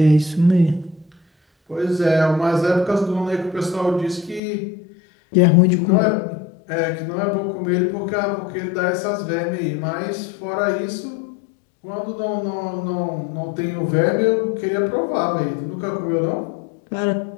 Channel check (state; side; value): drops out; right; at 4.4 s